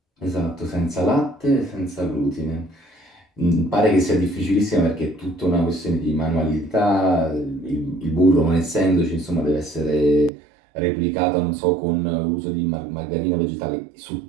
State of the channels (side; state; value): left; drops out; at 10.3 s